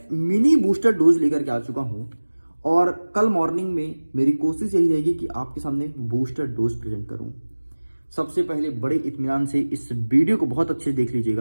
मिनी बूस्टर डोज लेकर के आ चुका हूँ और कल मॉर्निंग में मेरी कोशिश यही रहेगी कि आपके सामने बूस्टर डोज प्रेजेंट करूँ। सबसे पहले बड़े इत्मीनान से इस वीडियो को बहुत अच्छे से देख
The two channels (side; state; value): both; inverted; correlation -1.00